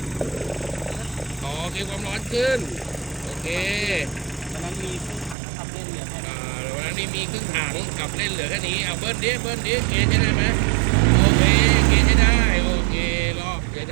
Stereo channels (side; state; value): left; drops out; at 5.4 s